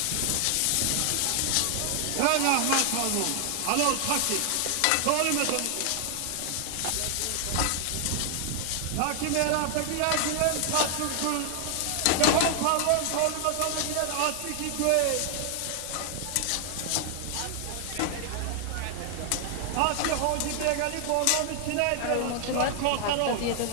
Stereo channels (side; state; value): both; different; correlation 0.00